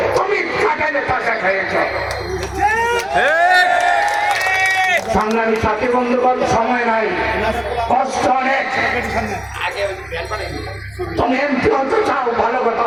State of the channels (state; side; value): noise; right; rumble, 26 dB below the sound